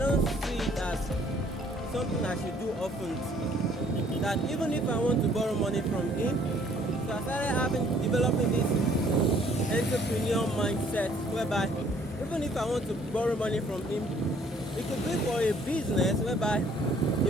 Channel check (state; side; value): normal; both; correlation 0.60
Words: see it as something I should do often. That even if I want to borrow money from him, so I started developing this entrepreneur mindset, whereby even if I want to borrow money from him, it could be for a business whereby